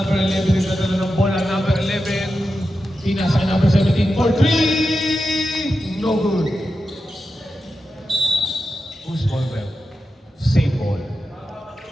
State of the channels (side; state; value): both; normal; correlation 0.90